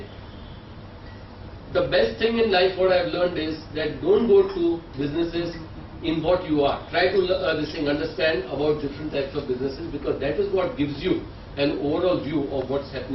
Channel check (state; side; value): identical; both; correlation 1.00